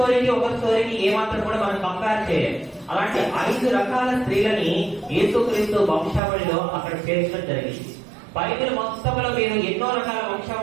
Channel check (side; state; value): left; drops out; at 6.2 s